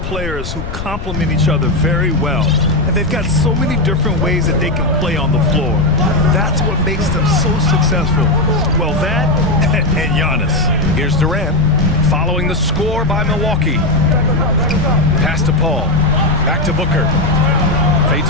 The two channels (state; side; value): noise; left; rumble, 7 dB below the sound